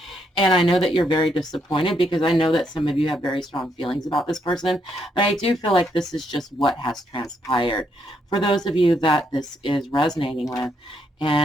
And I know that you're very disappointed because I know that some of you have very strong feelings about this person. But I do feel like this is just what has transpired. For those of you that this is resonating with,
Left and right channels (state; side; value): normal; both; correlation 0.75